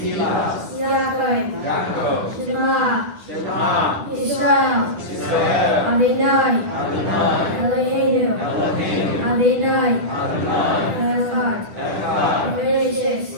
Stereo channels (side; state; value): left; late; 10 ms